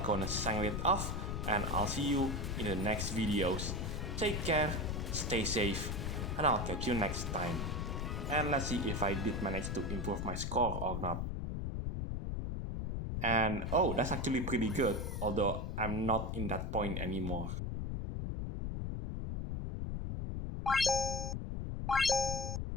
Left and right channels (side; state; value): left; noise; rumble, 2 dB below the sound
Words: signing it off, and I'll see you in the next videos. Take care, stay safe, and I'll catch you next time. And let's see if I did manage to improve my score or not. And oh, that's actually pretty good, although I'm not in that point anymore.